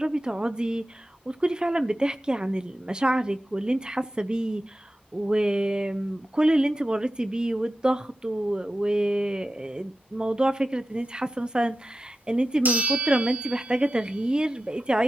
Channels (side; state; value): both; normal; correlation 0.92